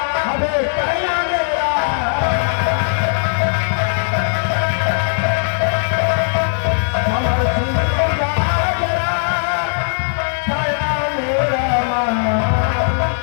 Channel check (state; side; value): silent; right; digital silence